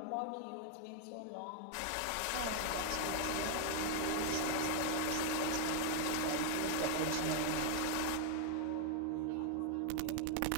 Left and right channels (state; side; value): different; both; correlation 0.00